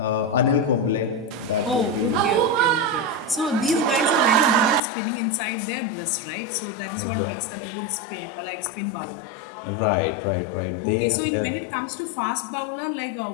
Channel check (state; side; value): drops out; right; at 4.8 s